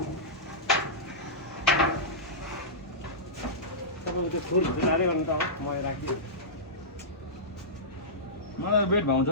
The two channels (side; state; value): both; normal; correlation -0.16